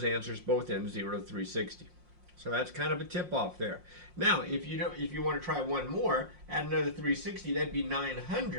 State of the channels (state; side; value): late; left; 5.6 ms